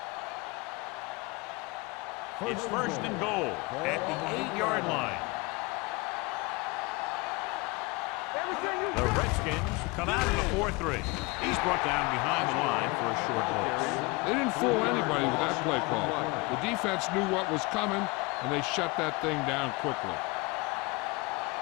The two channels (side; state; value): right; quieter; 25.5 dB